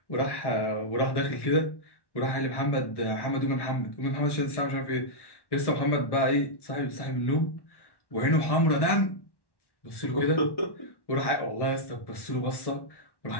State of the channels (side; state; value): right; late; 1.1 ms